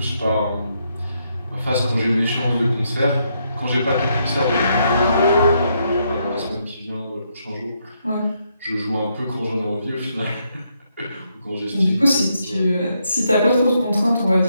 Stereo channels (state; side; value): inverted; both; correlation -0.77